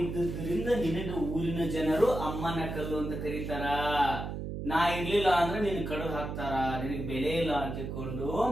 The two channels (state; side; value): noise; right; hum, 5 dB below the sound